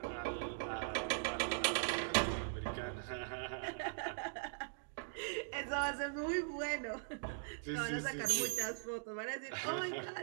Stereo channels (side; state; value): left; silent; digital silence